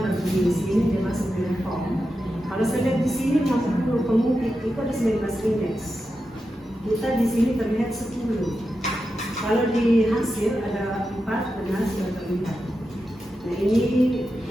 di sini dia masuk di form. Kalau saya lihat di sini 50 pengungkit itu ada 19 indeks. Kita di sini terlihat 10. Kalau di hasil ada 4 benar sudah terlihat. Nah ini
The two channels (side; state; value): both; normal; correlation 0.89